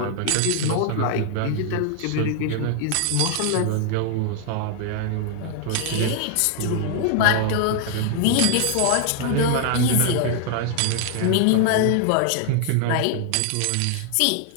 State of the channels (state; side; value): different; both; correlation 0.00